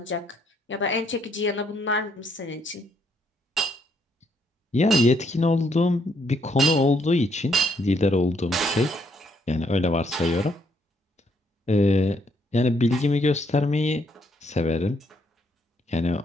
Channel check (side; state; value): both; normal; correlation 0.72